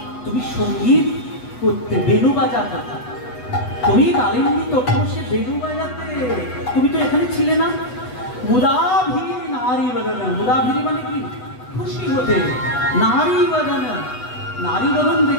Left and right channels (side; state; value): right; late; 8.0 ms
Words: তুমি সঙ্গীত করতে, বেনু বাজাতে। তুমি কালিন্দী তটে বসে বেনু বাজাতে, তুমি তো এখানে ছিলে না। মুদাভিরি নারী বদন। মুদাভিরি মানে কি? খুশি হতে। নারী বদন, নারী বদন